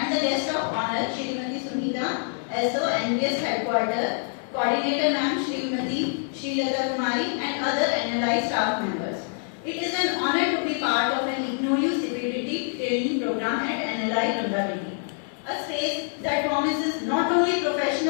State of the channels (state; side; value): silent; right; 61 dB below the other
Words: the guest of honor, Srimati Sunita, SO, NVS Headquarters, Coordinator Ma'am, Srimati Srilata Kumari, and other NLI staff members. It is an honor to be part of an IGNOU CPDT training program at NLI Ranga Reddy. A space that promises not only